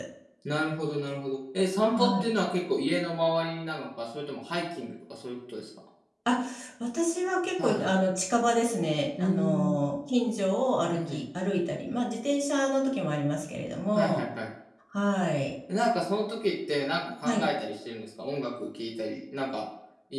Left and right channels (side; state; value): both; identical; correlation 1.00